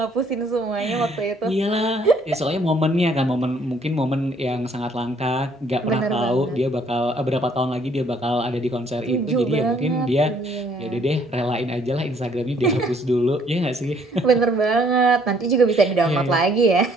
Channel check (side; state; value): both; normal; correlation 0.63